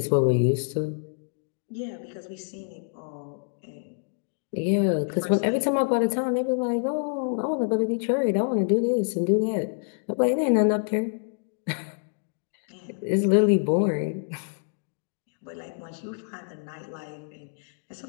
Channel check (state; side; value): silent; right; digital silence